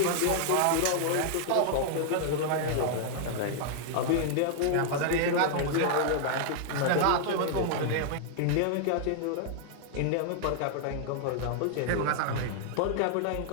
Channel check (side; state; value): both; different; correlation -0.01